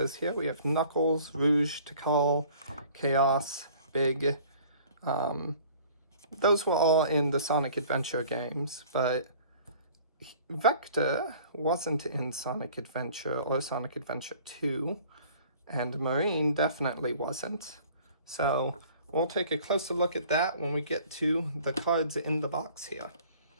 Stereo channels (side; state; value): both; inverted; correlation -0.51